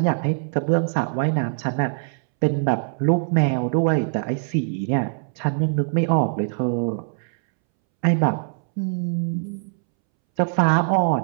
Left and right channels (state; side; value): silent; left; 64 dB below the other